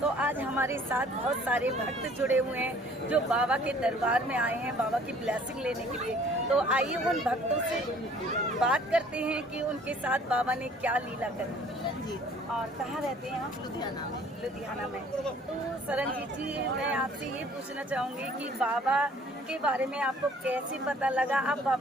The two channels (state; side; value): normal; both; correlation 0.55